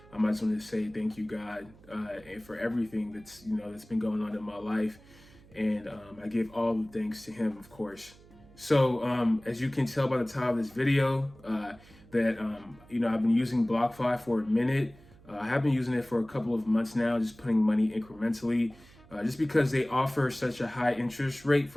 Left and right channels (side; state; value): right; noise; hum, 24 dB below the sound